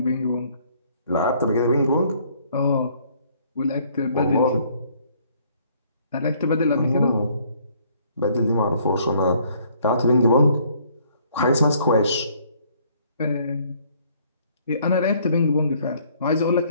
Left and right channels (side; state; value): both; inverted; correlation -0.62